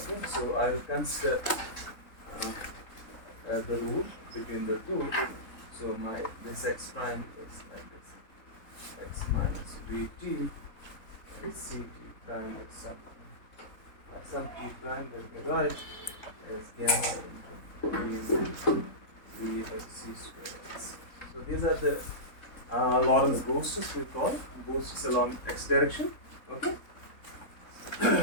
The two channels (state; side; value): late; right; 3.7 ms